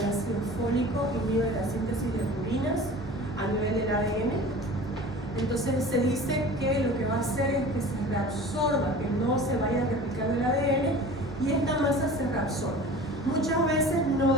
ácido fólico, inhibe la síntesis de purinas a nivel del ADN. Entonces se dice que lo que va a hacer es que se reabsorba, que no se vaya a replicar el ADN y esta masa se reabsorba. Muchas veces no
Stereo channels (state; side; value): normal; both; correlation 0.39